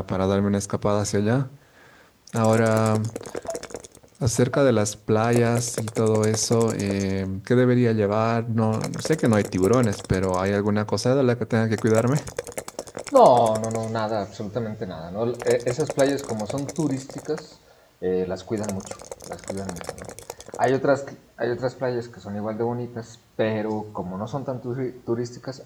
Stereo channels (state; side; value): identical; both; correlation 1.00